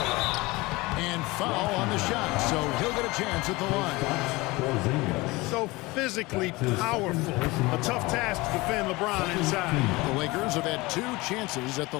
And foul on the shot, so he'll get a chance at the line. So physically powerful. A tough task to defend LeBron inside. The Lakers have had 2 chances at the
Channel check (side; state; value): right; quieter; 22.3 dB